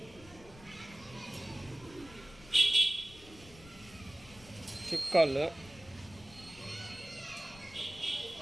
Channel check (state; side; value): noise; left; rumble, 20 dB below the sound